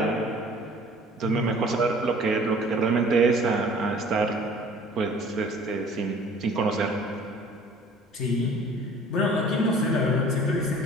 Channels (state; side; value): normal; both; correlation 0.50